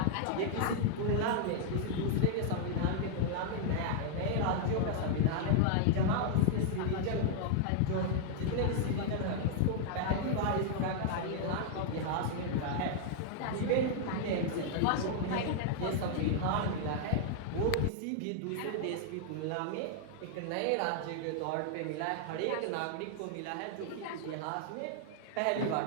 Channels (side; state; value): both; different; correlation -0.01